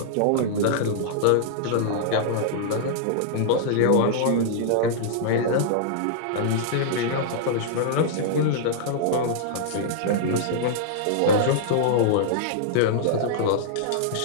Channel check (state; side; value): different; both; correlation -0.02